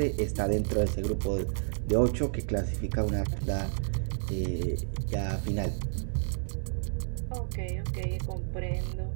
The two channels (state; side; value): silent; left; digital silence